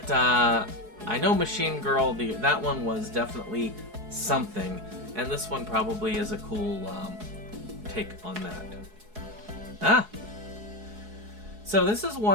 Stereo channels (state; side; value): late; left; 4.7 ms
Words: I know Machine Girl, that one was definitely something, and this one probably is a cool take on that. So this is